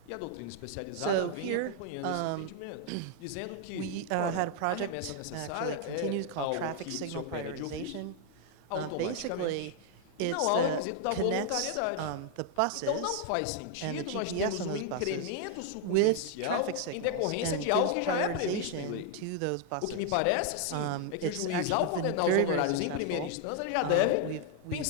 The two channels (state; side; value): different; both; correlation 0.00